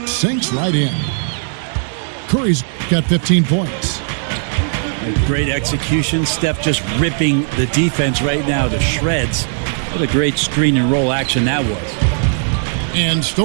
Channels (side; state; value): left; silent; digital silence